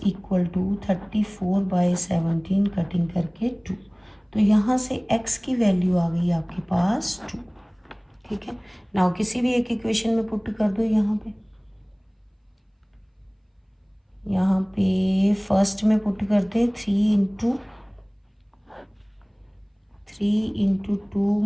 equal to 34/17 cutting करके 2। तो यहाँ से x की वैल्यू आ गई आपके पास 2। ठीक है, नाउ किसी भी एक इक्वेशन में पुट कर दो। यहाँ पे फर्स्ट में पुट करते 3 × 2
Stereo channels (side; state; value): both; identical; correlation 1.00